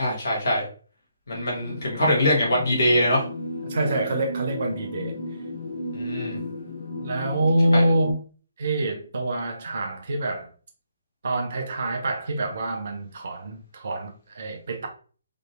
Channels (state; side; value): inverted; both; correlation -0.78